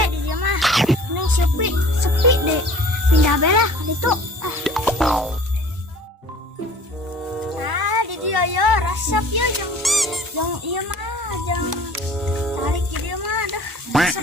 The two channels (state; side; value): normal; both; correlation 0.47